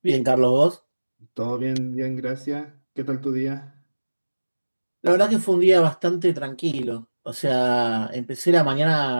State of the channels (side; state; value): both; inverted; correlation -1.00